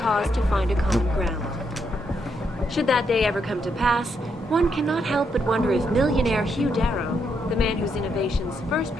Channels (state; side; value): normal; both; correlation 0.78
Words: cause to find a common ground. Should that day ever come to pass, one cannot help but wonder if millionaire Hugh Darrow, the man whose innovations first